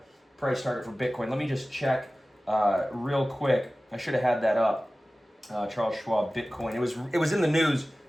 price target for Bitcoin. Let me just check real quick. I should have had that up. Charles Schwab Bitcoin. It was in the news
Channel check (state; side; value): normal; both; correlation 0.97